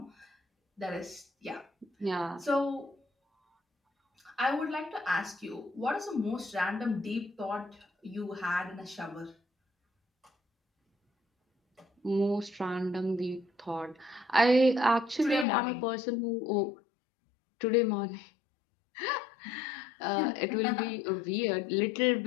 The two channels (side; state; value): right; drops out; at 15.5 s